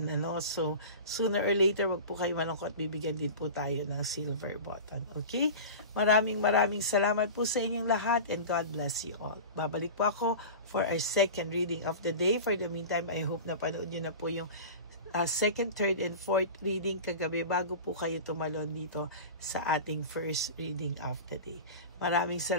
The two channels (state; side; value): inverted; both; correlation -0.32